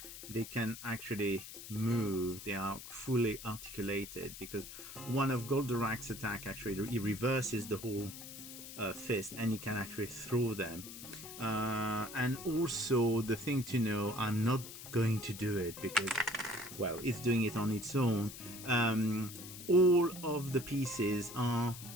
they can actually move. They are fully articulated because one of Goldorak's attack actually he reverses the whole fist, and you can actually throw them. And also the thing to know, I'm not going to do it because, well, it's doing it on its own. All of the pieces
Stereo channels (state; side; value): noise; left; hiss, 12 dB below the sound